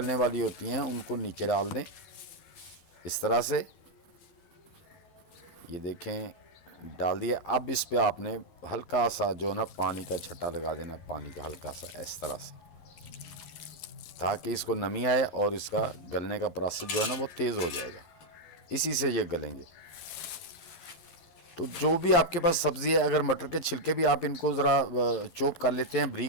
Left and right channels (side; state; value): right; late; 11 ms